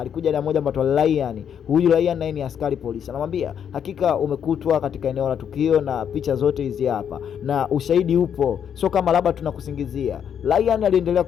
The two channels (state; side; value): quieter; right; 8.4 dB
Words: na mmoja mbatwa Ryan. Huyu Ryan naye ni askari polisi. Anamwambia hakika umekutwa katika eneo la tukio na picha zote hizi hapa na ushahidi upo, sio kama labda tunakusingizia. Ryan aliendelea